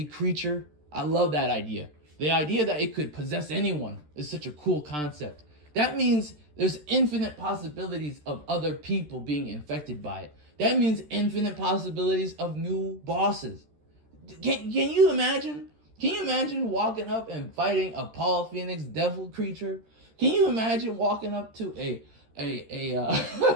creature. I love that idea. The idea that it could possess anyone is such a cool concept. That means there's infinite possibilities of other people being infected by it. That means infinite possibilities of new bosses. Can you imagine? Can you imagine walking up and fighting a Paul Phoenix devil creature? Can you imagine walking up to can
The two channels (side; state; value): left; late; 13 ms